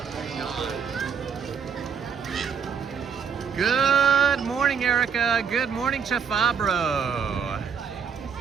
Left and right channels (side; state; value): left; quieter; 6.6 dB